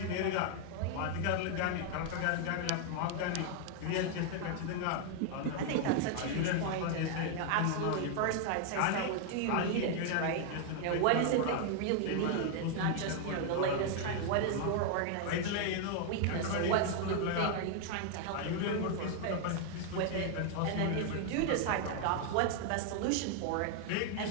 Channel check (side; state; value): both; different; correlation 0.00